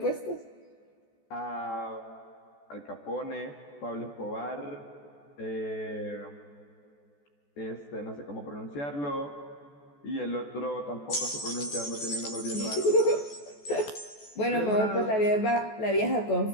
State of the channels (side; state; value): right; late; 14 ms